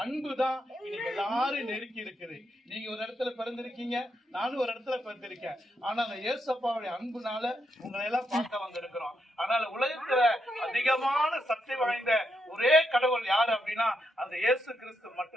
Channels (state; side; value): normal; both; correlation 0.81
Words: அன்பு தான் இன்னைக்கு எல்லாரும் நெருக்கி இருக்குது. நீங்க ஒரு இடத்துல பிறந்திருக்கீங்க, நானும் ஒரு இடத்துல பிறந்திருக்கேன். ஆனா அந்த இயேசப்பாவுடைய அன்புனால உங்களை எல்லாம் பார்க்க வந்திருக்கிறோம். அதனால உலகத்துல அதிகமான சக்தி வாய்ந்த ஒரே கடவுள் யாரு அப்படின்னா அந்த இயேசு கிறிஸ்து